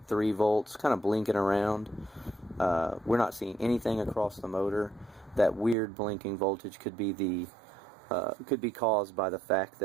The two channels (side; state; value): left; drops out; at 5.8 s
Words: volts kind of blinking around. We're not seeing anything across the motor. That weird blinking voltage could be caused by the fact